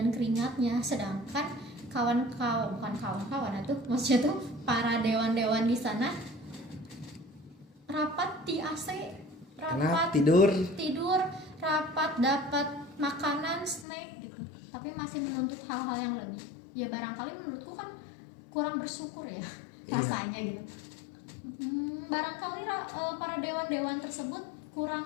keringatnya, sedangkan maksudnya tuh para dewan-dewan di sana rapat di AC, rapat tidur, rapat dapat makanan, snack gitu, tapi masih menuntut hal-hal yang lebih. Ya barangkali menurutku kan kurang bersyukur ya rasanya gitu. Barangkali para dewan-dewan tersebut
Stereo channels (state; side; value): drops out; right; at 13.9 s